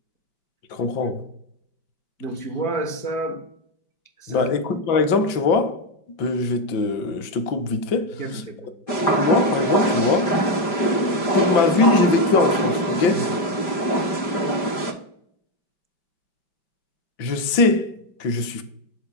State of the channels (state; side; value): late; right; 5.0 ms